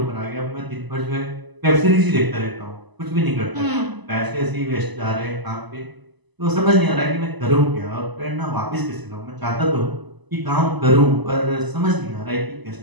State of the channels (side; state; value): left; late; 1.0 ms